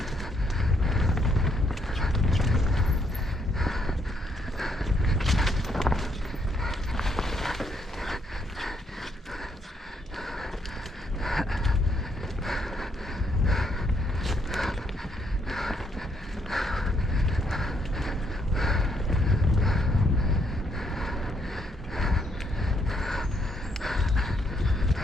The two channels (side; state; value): both; normal; correlation 0.73